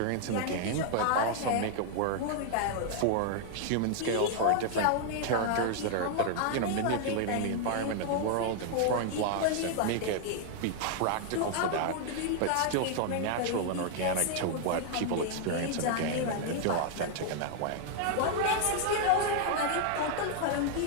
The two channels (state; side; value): different; both; correlation 0.00